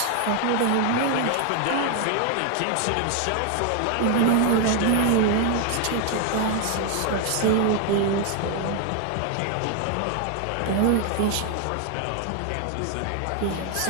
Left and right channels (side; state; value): both; different; correlation 0.00